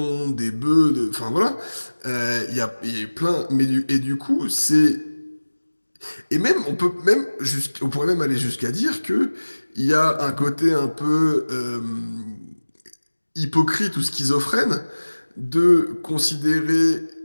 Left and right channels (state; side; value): inverted; both; correlation -1.00